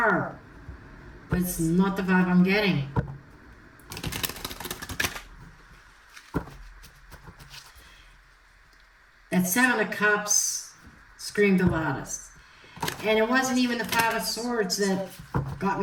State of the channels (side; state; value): both; identical; correlation 1.00